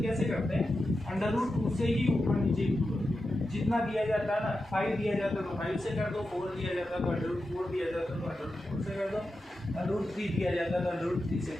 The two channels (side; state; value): both; normal; correlation 0.90